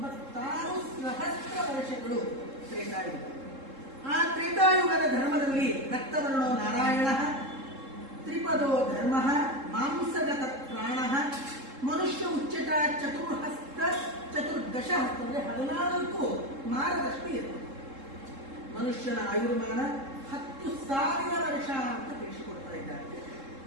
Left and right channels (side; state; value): left; late; 3.7 ms